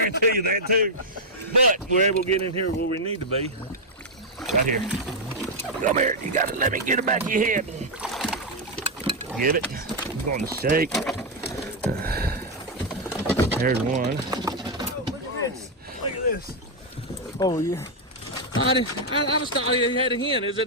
you that too. But we're able to get in here where we need to be. Right here. Come here. You gotta let me get it back of your head. Get it. I'm going to shake. There's one. Oh, look at this. Look at this. Oh, yeah. I was thought you had a hen. Is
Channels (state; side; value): normal; both; correlation -0.01